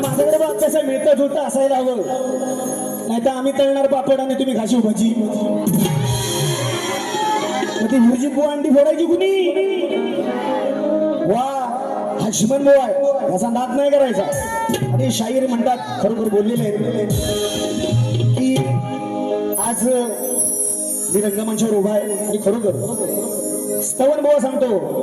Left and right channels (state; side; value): identical; both; correlation 1.00